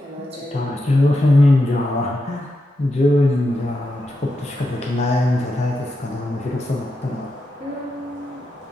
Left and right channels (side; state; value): both; normal; correlation 0.86